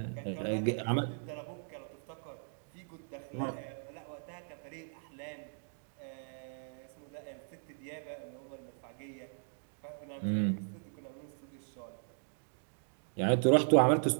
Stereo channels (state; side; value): silent; left; digital silence